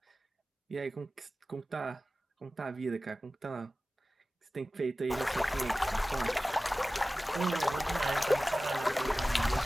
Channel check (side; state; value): both; normal; correlation 0.96